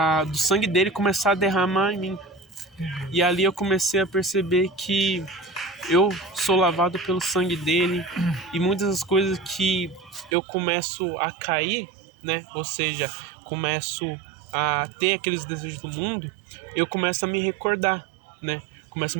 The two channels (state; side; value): drops out; left; at 10.3 s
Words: do sangue dele começar a derramar em mim. E ali eu comecei a perceber que eu sou lavado pelo sangue dele e muitas das coisas que eu começo a cair, né? Ou seja, começo a ter aqueles desejos do mundo, eu começo a me recordar, né? Começo a